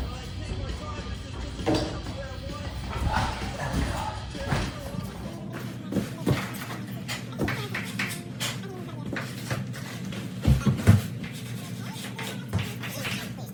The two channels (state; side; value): identical; both; correlation 1.00